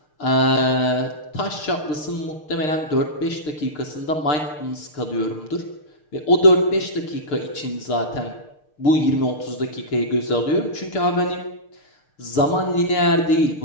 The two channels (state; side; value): late; right; 6.6 ms